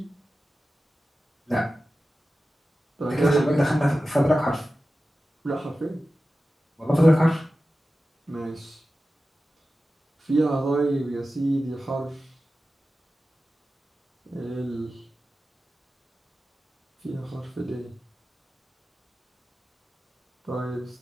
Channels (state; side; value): normal; both; correlation 0.94